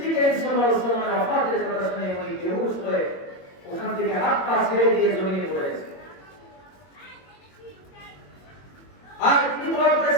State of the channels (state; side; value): late; right; 21 ms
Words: করিম সাল্লাল্লাহু আলাইহি ওয়াসাল্লামের ওয়াফাতের কথা শুনে উনি বেহুশ হয়ে ওখান থেকে হাত পা ছেড়ে দিয়ে জমিনে পড়েছে। আর তিনি দোয়া